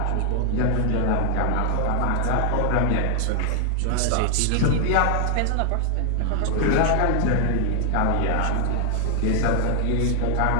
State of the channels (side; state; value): both; different; correlation 0.00